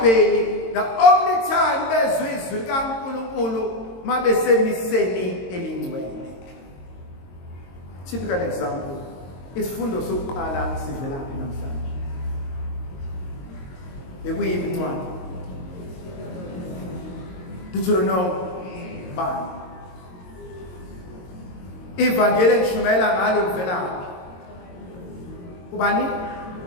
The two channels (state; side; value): late; right; 22 ms